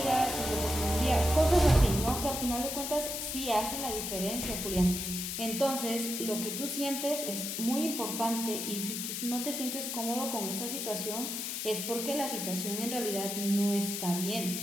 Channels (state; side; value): noise; left; hiss, 4 dB below the sound